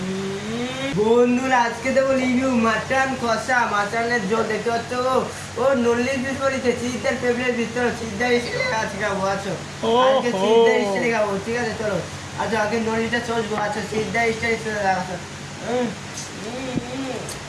বন্ধুরা আজকে দেবো রিভিউ মাটন কষা, মাটনের জল দেখতে পাচ্ছ, ও নল্লির পিস বলেছে, সিদ্ধার ফেভারিট পিস, চলো সিদ্ধা এসে আজকে খাবো, আছো আজকে সিদ্ধা এসে খাবো, ঠিক আছে চলো। আচ্ছা আগে নল্লিটা চলবো, আচ্ছা সিদ্ধা এসে আচ্ছা।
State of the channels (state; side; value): noise; left; hum, 27 dB below the sound